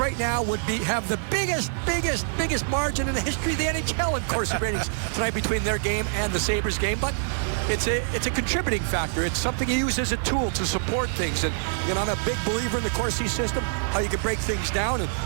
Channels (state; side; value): silent; left; digital silence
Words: now would have the biggest margin in the history of the NHL in Corsi ratings tonight between their game and the Sabres game. But it's a contributing factor. It's something you use as a tool to support things. And I'm a big believer in the Corsi system, how you can break things down. And